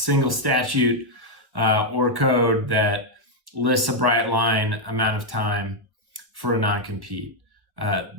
statute or code that lists a bright line amount of time for a non-compete.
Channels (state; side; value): late; left; 1.3 ms